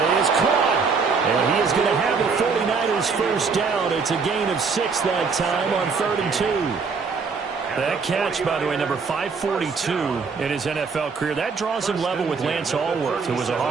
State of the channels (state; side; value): quieter; left; 5.1 dB